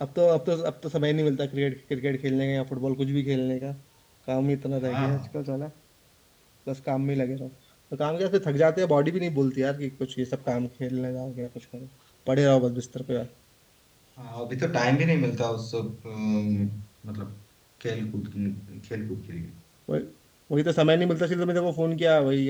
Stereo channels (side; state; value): both; identical; correlation 1.00